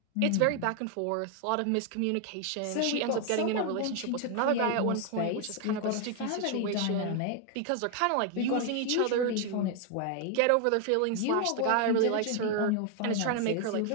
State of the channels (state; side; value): different; both; correlation 0.01